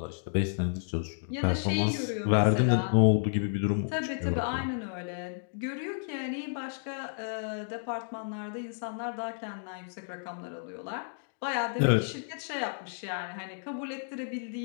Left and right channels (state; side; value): silent; right; digital silence